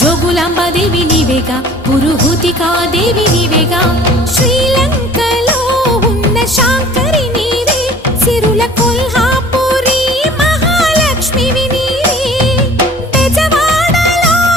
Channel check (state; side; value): normal; both; correlation 0.48